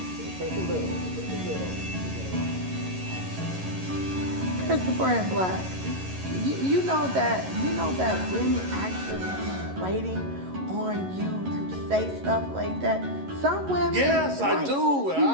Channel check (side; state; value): left; late; 11 ms